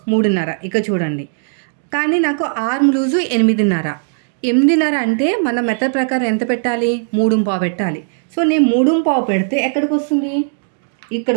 3.5, ఇక చూడండి. కానీ నాకు ఆర్మ్ లూజు 8.5. 8.5 అంటే మన మెథడ్ ప్రకారం ఎంత పెట్టాలి? 3.5 పెట్టాలి. సో నేను 3.5 పెడితే ఎక్కడికి వస్తుంది? ఇక్కడ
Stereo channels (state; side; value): silent; left; digital silence